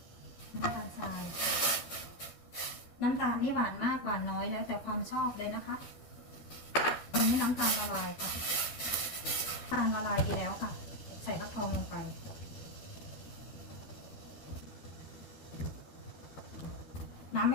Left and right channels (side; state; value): right; late; 12 ms